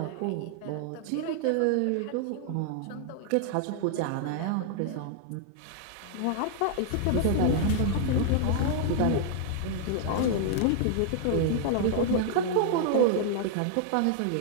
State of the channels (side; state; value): both; different; correlation -0.01